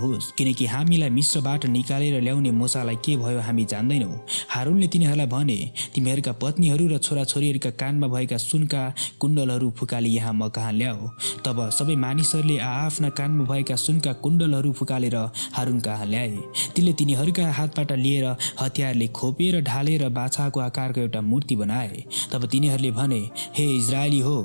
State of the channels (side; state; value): both; inverted; correlation -1.00